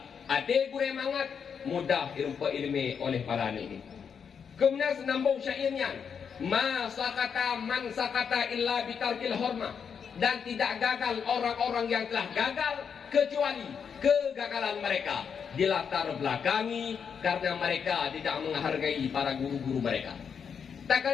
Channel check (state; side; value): quieter; right; 6.9 dB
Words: hati gure mangat mudah ilmu oleh para ini. Kemudian senambung syairnya, ma sakata man sakata illa bitarkil hormah, dan tidak gagal orang-orang yang telah gagal kecuali kegagalan mereka dilatar belakangi karena mereka tidak menghargai para guru-guru mereka. Tak